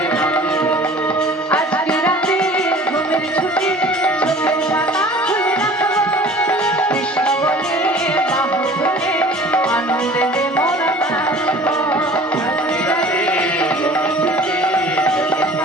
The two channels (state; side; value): normal; both; correlation 0.46